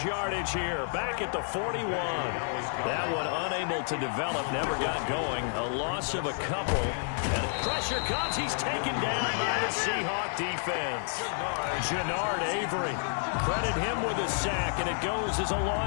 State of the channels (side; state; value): right; silent; digital silence